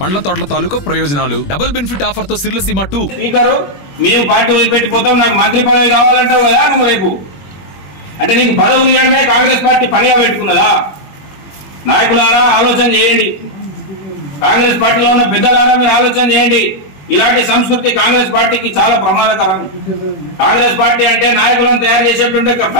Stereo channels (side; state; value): right; late; 21 ms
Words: పండ్ల తోటల తాలూకా ప్రయోజనాలు, డబుల్ బెనిఫిట్ ఆఫర్ తో సిర్లసీమ 2. స్పీకర్, మేము పార్టీ వదిలిపెట్టిపోతాం, నాకు మంత్రి పదవి కావాలంటావు కదా నువ్వు రేపు. అంటే నీకు పదవులు ఇవ్వడమే కాంగ్రెస్ పార్టీ పనిగా పెట్టుకున్నదా? నాయకులారా ఆలోచన చేయండి, కాంగ్రెస్ పార్టీలో ఉన్న పెద్దలారా మీరు ఆలోచన చేయండి. ఇలాంటి సంస్కృతి కాంగ్రెస్ పార్టీకి చాలా ప్రమాదకరం. కాంగ్రెస్ పార్టీ అంటే నాయకులను తయారు చేసేటువంటి